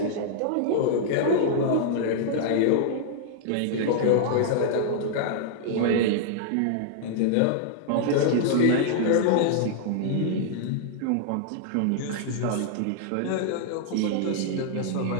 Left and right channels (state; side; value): different; both; correlation -0.01